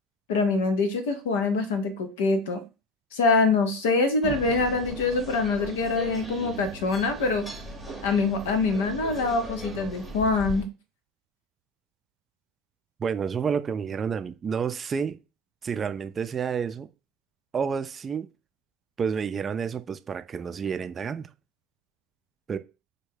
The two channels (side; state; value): both; normal; correlation 0.26